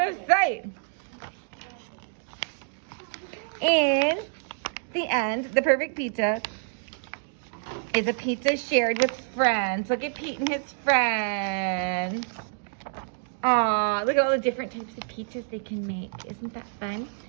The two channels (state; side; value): silent; left; digital silence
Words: sight. In the end, the perfect pizza is a pizza shared with friends. Look at Pete and his friends. Aw, look at all the different types of pizzas they can make. Isn't that fun?